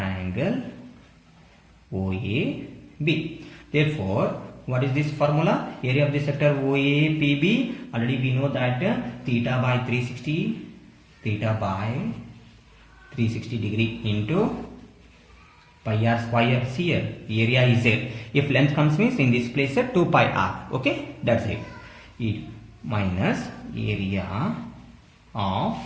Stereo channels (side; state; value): both; identical; correlation 1.00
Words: Therefore, what is this formula? Area of the sector OAPB. Already we know that theta by 360 degree into pi r square. See here, area is there. If length comes means in this place 2 pi r. Okay, that's it. It minus area of